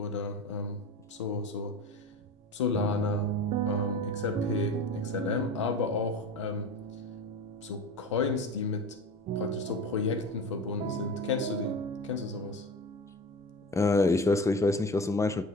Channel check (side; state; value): both; normal; correlation 0.31